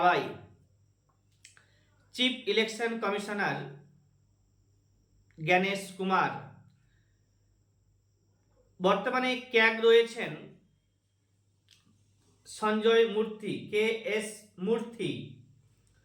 Chief election commissioner Gyanesh Kumar. বর্তমানে ক্যাগ রয়েছেন Sanjay Murthy, K S Murthy.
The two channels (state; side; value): identical; both; correlation 1.00